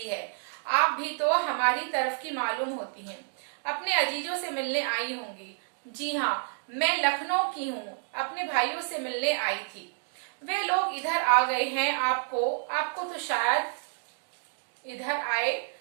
है। आप भी तो हमारी तरफ की मालूम होती हैं, अपने अजीजों से मिलने आई होंगी। जी हाँ, मैं लखनऊ की हूँ, अपने भाइयों से मिलने आई थी। वे लोग इधर आ गए हैं। आपको तो शायद इधर आए।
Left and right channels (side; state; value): left; silent; digital silence